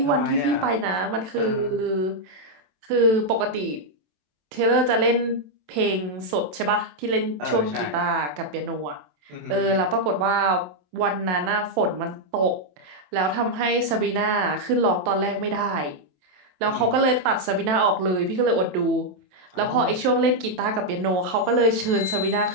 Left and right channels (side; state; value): left; late; 27 ms